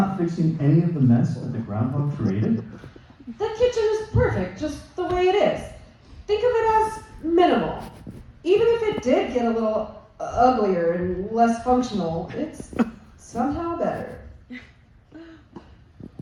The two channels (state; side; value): identical; both; correlation 1.00